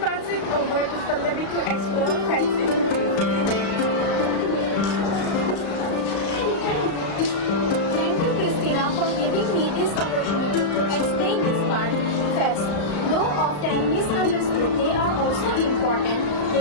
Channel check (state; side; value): late; right; 35 ms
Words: it over to Pallavi to explore fats in detail. Thank you, Christina, for giving me this opportunity to explain this part. Fats, though often misunderstood, they are also important.